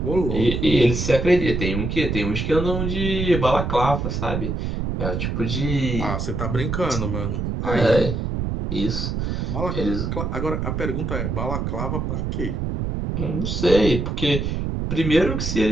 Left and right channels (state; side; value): noise; right; rumble, 2 dB below the sound